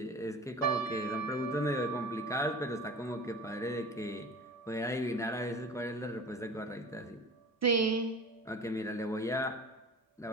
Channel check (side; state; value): both; normal; correlation 0.38